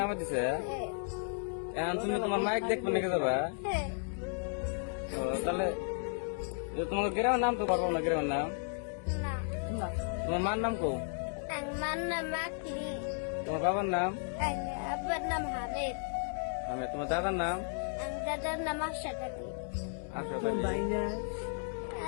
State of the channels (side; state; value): right; silent; 55 dB below the other